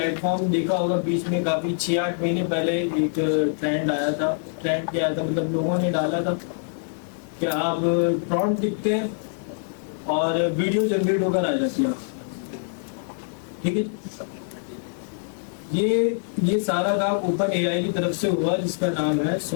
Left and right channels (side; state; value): right; silent; digital silence